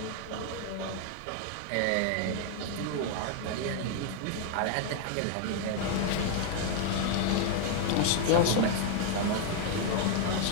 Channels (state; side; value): different; both; correlation 0.00